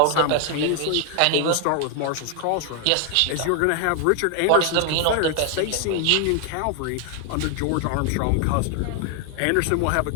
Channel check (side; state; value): both; different; correlation 0.00